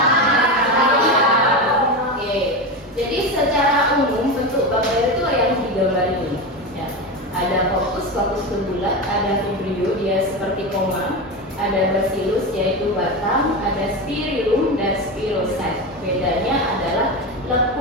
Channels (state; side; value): normal; both; correlation 0.19